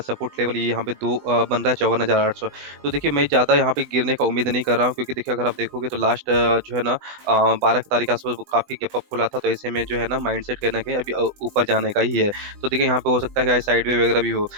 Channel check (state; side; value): late; left; 20 ms